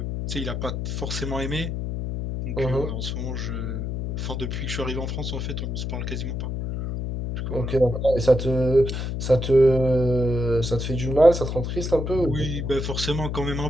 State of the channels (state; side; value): noise; left; hum, 3 dB below the sound